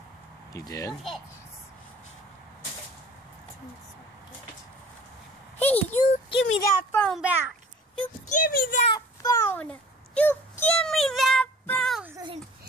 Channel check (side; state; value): both; normal; correlation 0.47